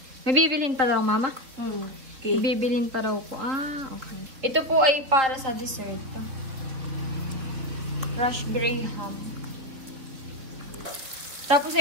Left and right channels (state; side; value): late; left; 4.1 ms